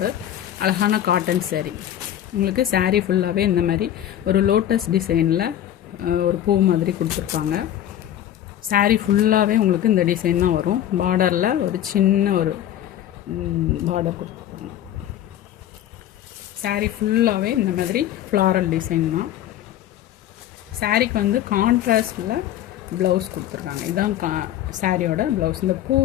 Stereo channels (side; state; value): right; quieter; 11.5 dB